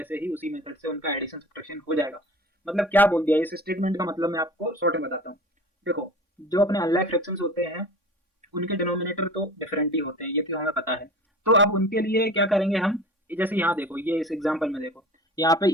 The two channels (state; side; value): normal; both; correlation 0.39